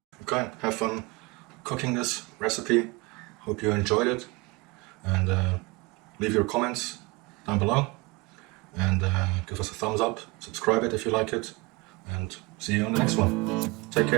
Okay, have fun cooking this recipe. Hope you enjoyed it, and leave your comments down below, and give us a thumbs up, subscribe it if you like it, and see you on the next one. Take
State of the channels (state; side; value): quieter; left; 24.6 dB